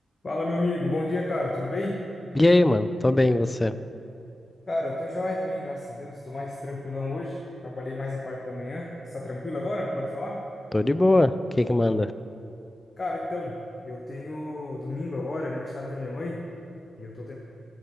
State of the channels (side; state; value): both; normal; correlation 0.96